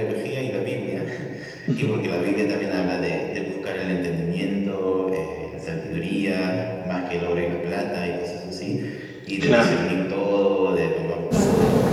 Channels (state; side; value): identical; both; correlation 1.00